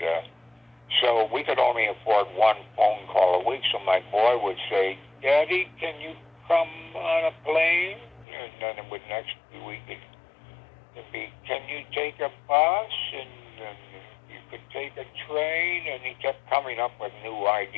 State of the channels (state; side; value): drops out; right; at 8.2 s